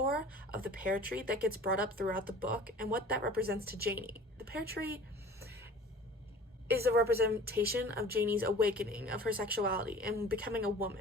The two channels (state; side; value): normal; both; correlation 0.44